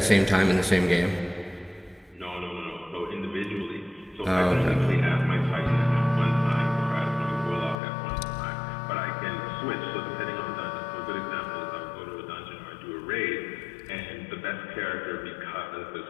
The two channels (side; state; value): right; drops out; at 7.8 s